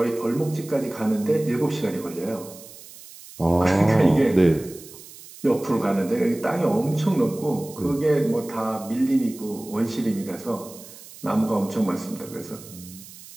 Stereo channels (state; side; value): noise; right; hiss, 18 dB below the sound